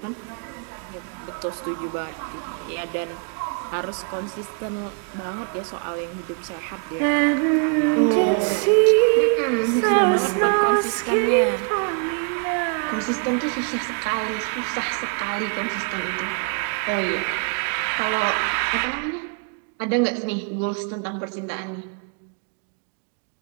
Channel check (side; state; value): left; quieter; 37.7 dB